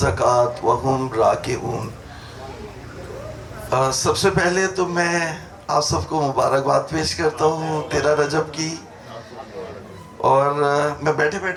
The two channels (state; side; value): identical; both; correlation 1.00